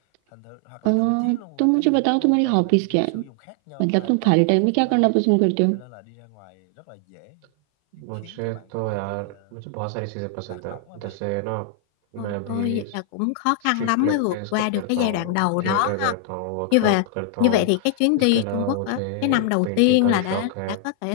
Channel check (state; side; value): different; both; correlation 0.00